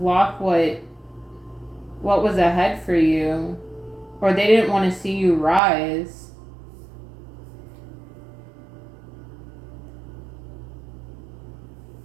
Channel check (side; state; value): left; drops out; at 5.6 s